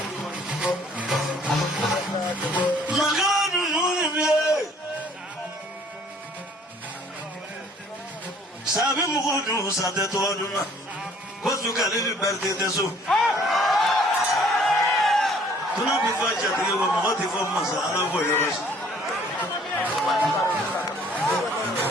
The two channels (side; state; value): both; normal; correlation 0.58